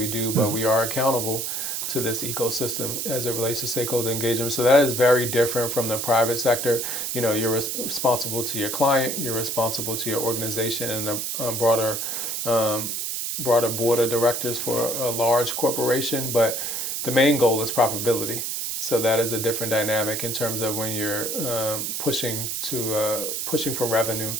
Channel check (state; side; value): noise; right; hiss, 2 dB below the sound